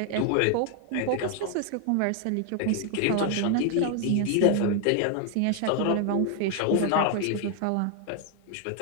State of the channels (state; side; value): different; both; correlation 0.00